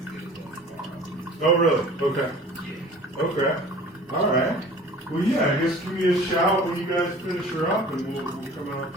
Oh, really? Okay. Okay. All right. Well, yeah, I guess give me a shout when you guys finish her up, and we'll come out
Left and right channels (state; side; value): normal; both; correlation 0.44